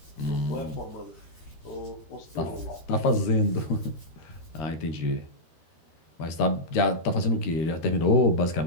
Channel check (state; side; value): late; right; 13 ms